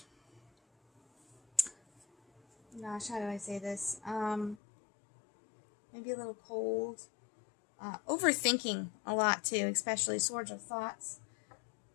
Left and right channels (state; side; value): drops out; right; at 4.6 s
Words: Gosh, how do I say this? Maybe a little cold. Overthinking a lot too, especially Swords of Thoughts.